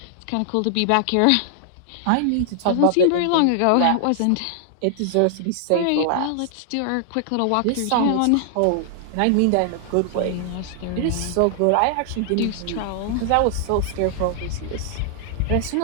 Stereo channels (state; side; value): different; both; correlation 0.00